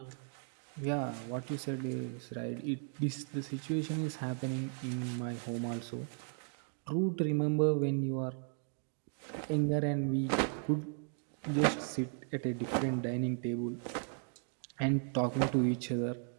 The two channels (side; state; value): left; silent; 54 dB below the other